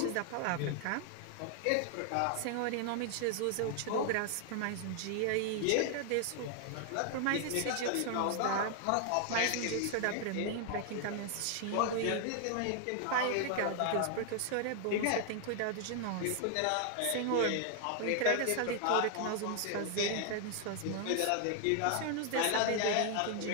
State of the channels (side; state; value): both; different; correlation 0.00